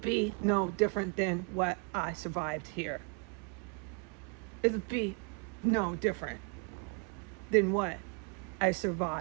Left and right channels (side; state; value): left; quieter; 33.3 dB